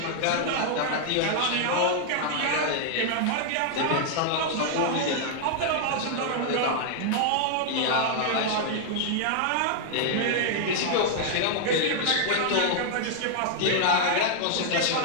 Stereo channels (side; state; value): both; different; correlation 0.00